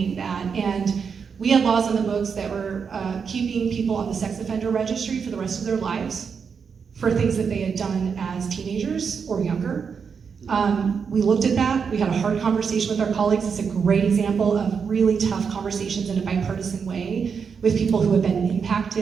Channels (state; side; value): quieter; left; 6.2 dB